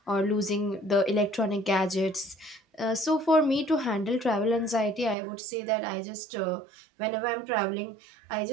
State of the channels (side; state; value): left; drops out; at 5.2 s